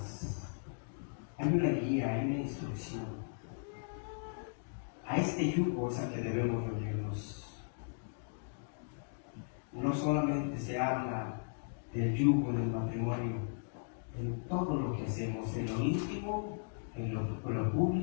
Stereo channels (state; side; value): silent; right; digital silence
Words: Hay una guía, hay una instrucción. A este yugo es al que debemos unirnos. No solamente se habla del yugo del matrimonio, en todo lo que hacemos, en lo íntimo, en lo